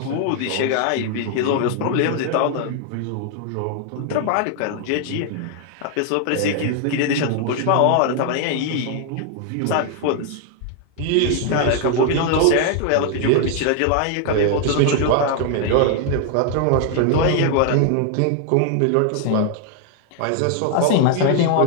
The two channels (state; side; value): different; both; correlation 0.00